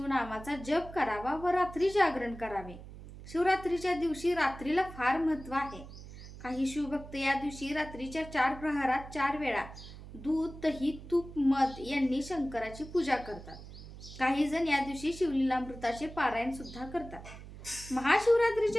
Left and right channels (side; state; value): right; noise; hum, 15 dB below the sound